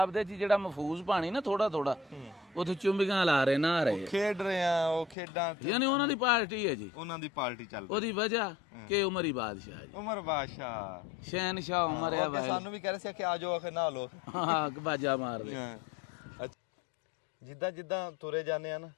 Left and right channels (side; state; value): right; drops out; at 5.2 s